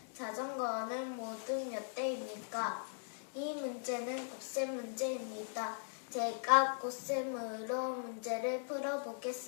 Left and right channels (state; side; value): silent; right; digital silence